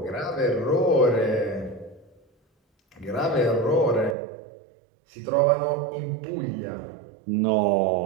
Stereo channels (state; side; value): drops out; left; at 4.2 s